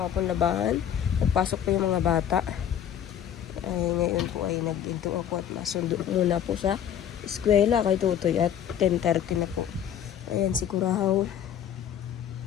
pong labahan. Nagpasok po yung mga bata. Ay, ngayon po ay nag-into ako at masundo muna po sa eskwela kay Tutoy at 10:30 na po. Ayan si Kurahaw.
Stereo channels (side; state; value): right; quieter; 9.6 dB